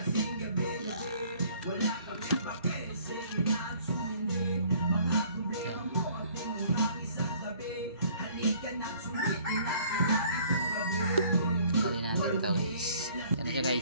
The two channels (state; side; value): inverted; both; correlation -0.56